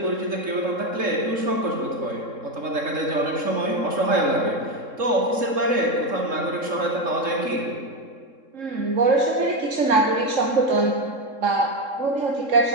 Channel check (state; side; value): late; left; 3.7 ms